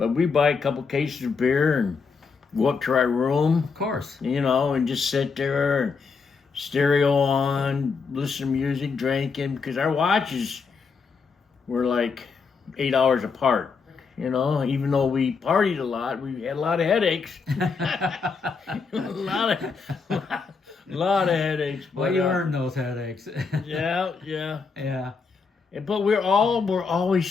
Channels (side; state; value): right; quieter; 5.1 dB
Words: we buy a couple cases of beer and go up to our room. Of course. You know, and just sit there and stereo on, listen to music, drinking, because our watches were like 8 hours apart. You know, even though we partied a lot, we had a lot of headaches. a lot of headaches. Well, you earned those headaches. Yeah. But we're always